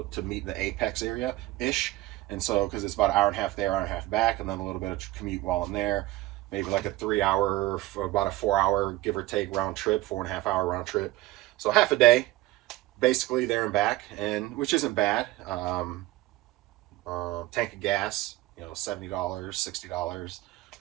to meet in the apex area ish. And so, because it's about an hour and a half there, hour and a half back, and then a little bit of commute while I'm there. Maybe like a 3-hour, about a 4-hour, give or take, round trip, 4.5-hour round trip. So half a day, basically, there and back, and which isn't bad. Tank of gas, you know, $70, $60.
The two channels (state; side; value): quieter; left; 17.3 dB